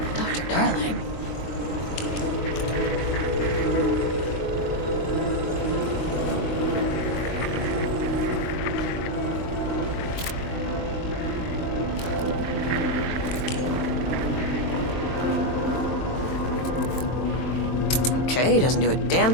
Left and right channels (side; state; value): right; late; 23 ms